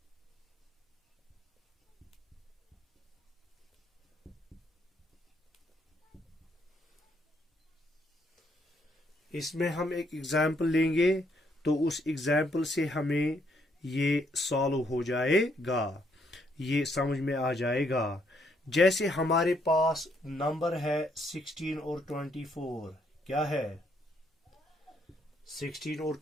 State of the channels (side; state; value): both; normal; correlation 0.72